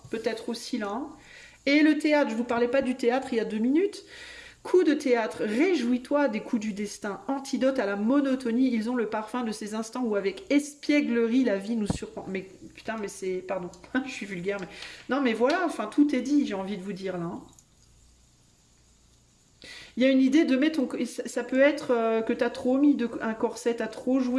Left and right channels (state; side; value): identical; both; correlation 1.00